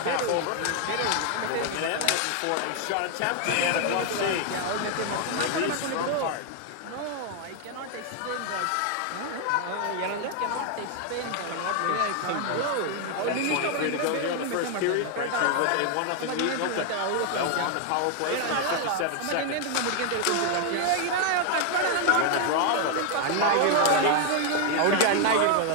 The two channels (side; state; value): both; different; correlation 0.00